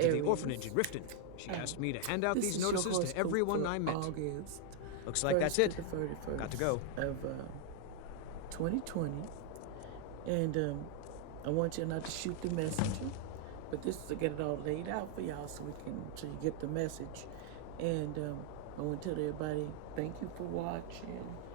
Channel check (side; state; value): both; different; correlation 0.00